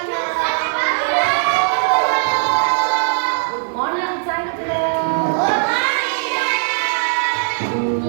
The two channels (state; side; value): silent; left; digital silence